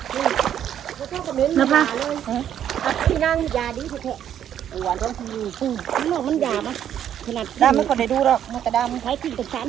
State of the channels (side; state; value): left; quieter; 10.0 dB